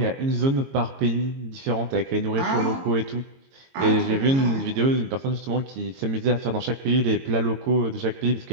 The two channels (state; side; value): late; left; 22 ms